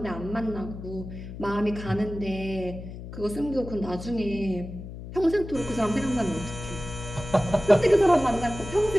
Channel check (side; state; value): left; noise; hum, 11 dB below the sound